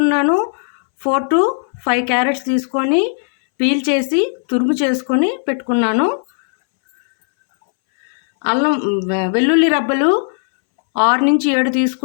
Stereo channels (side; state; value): right; silent; 65 dB below the other